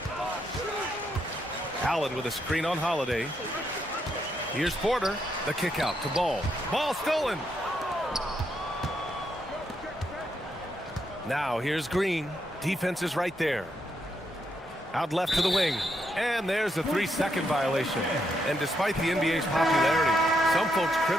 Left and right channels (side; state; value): both; normal; correlation 0.79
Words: Allen with a screen on Holiday. Here's Porter. The kick out to Ball. Ball stolen. Now here's Green. Defense is right there. Out left to the wing. And there's a 3-second violation. And despite the NBA's popularity, some folks